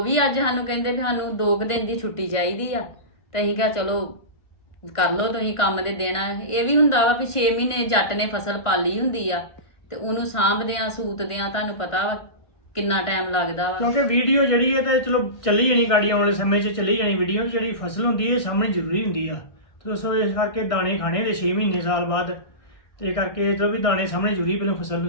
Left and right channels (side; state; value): right; late; 1.4 ms